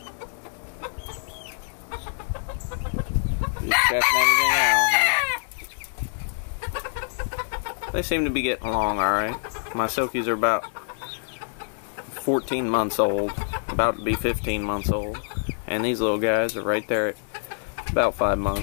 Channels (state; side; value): silent; right; 61 dB below the other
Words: You checking everything out, huh? They seem to be getting along alright. My silkies are about 14 months old, about to be 15 months old. And these little guys are right there at about 5